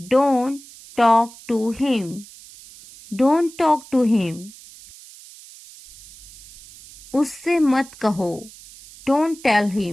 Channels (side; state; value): right; noise; hiss, 20 dB below the sound